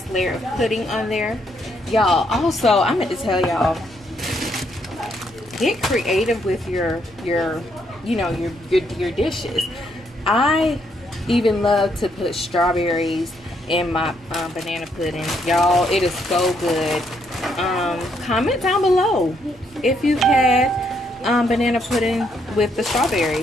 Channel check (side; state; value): both; normal; correlation 0.73